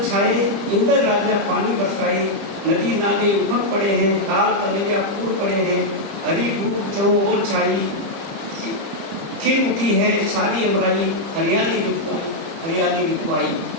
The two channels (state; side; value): late; left; 30 ms